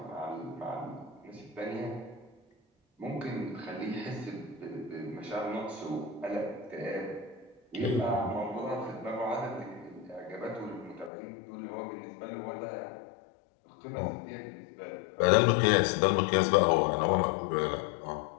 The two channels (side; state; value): right; drops out; at 11.1 s